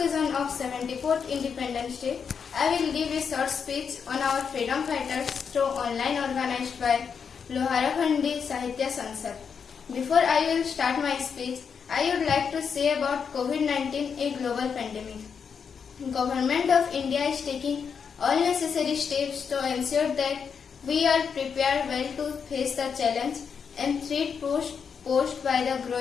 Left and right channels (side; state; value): right; quieter; 6.5 dB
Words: of 74th Independence Day, I will give a short speech on our freedom fighters through online organized by Loharakhandi Sahitya Sansad. Before I will start my speech, I would like to say about COVID-19, a global pandemic. Government of India is taking all necessary steps to ensure that we are prepared well to face the challenge and threat posed by the